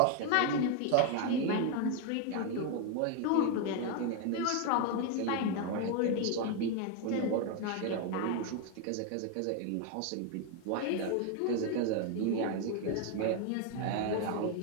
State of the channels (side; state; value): both; different; correlation 0.01